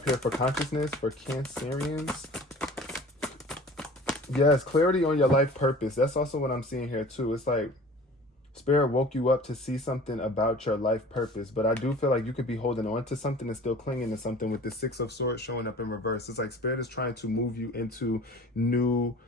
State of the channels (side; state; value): both; normal; correlation 0.44